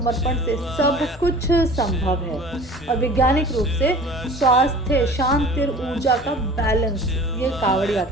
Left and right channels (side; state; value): both; normal; correlation 0.43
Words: से सब कुछ संभव है। और वैज्ञानिक रूप से स्वास्थ्य, शांति और ऊर्जा का बैलेंस ये कांवड़